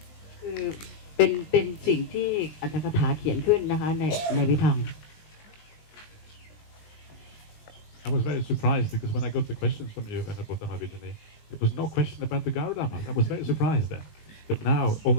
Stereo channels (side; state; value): right; late; 20 ms